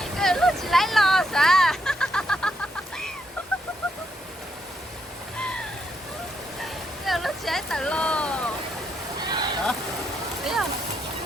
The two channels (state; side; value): normal; both; correlation 0.77